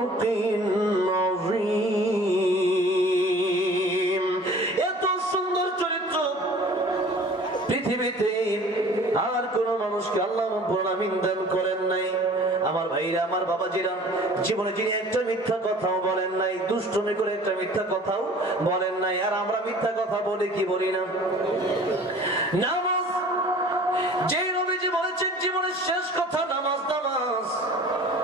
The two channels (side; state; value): both; normal; correlation 0.47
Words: আযীম। এত সুন্দর চরিত্র পৃথিবীতে আর কোন মানুষকে আল্লাহ রাব্বুল আলামিন দান করেন নাই। আমার ভাইরা, আমার বাবাজিরা, জীবনে যিনি একটা মিথ্যা কথাও বলেন নাই, দুষ্টুমি করে একটা মিথ্যা কথাও বলেন নাই। আর আমরা মিথ্যা কথা বলি কি বলি না? নামাজ, যেই নবীজি বলেছেন জীবনের শেষ কথা নামাজ, নামাজ,